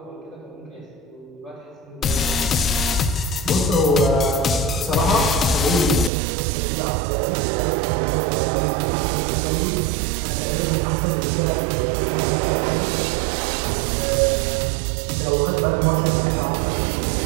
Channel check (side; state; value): left; drops out; at 6.1 s